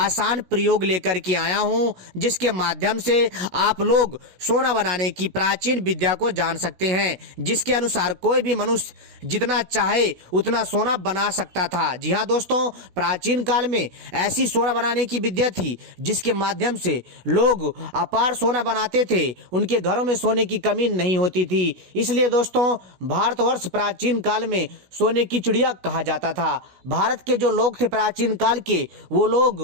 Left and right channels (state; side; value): late; left; 17 ms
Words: प्रयोग लेकर के आया हूं, जिसके माध्यम से आप लोग सोना बनाने की प्राचीन विद्या को जान सकते हैं, जिसके अनुसार कोई भी मनुष्य जितना चाहे उतना सोना बना सकता था। जी हां दोस्तों, प्राचीन काल में ऐसी सोना बनाने की विद्या थी जिसके माध्यम से लोग अपार सोना बनाते थे। उनके घरों में सोने की कमी नहीं होती थी। इसलिए दोस्तों, भारतवर्ष प्राचीन काल में सोने की चिड़िया कहा जाता था। भारत के जो लोग थे प्राचीन काल के, वो